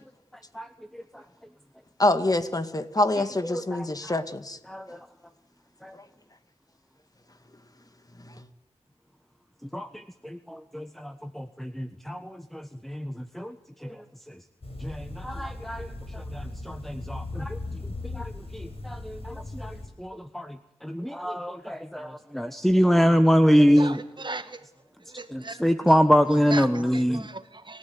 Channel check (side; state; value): both; normal; correlation 0.93